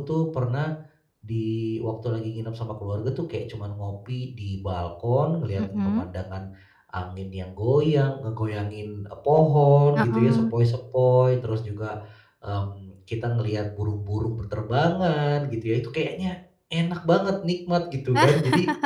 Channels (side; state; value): both; identical; correlation 1.00